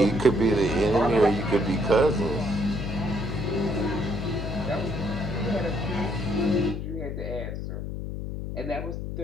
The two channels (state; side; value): noise; left; hum, 5 dB below the sound